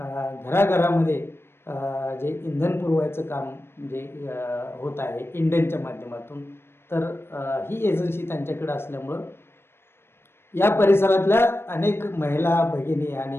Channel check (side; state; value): right; late; 0.12 ms